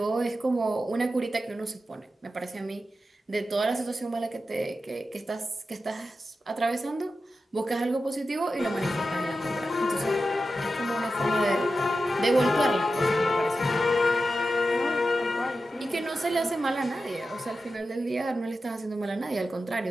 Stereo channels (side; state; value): both; normal; correlation 0.91